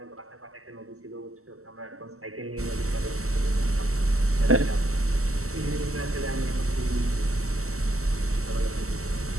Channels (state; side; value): late; left; 0.63 ms